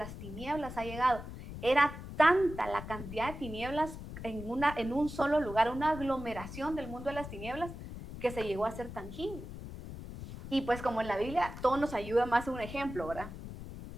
tinieblas ha llegado. Era tanta la cantidad de tinieblas en un solo lugar, una aglomeración del mundo de las tinieblas que se llegó a ser tangible. Y pues como en la Biblia todo nos ayuda más un ejemplo, ¿verdad?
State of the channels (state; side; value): noise; left; rumble, 11 dB below the sound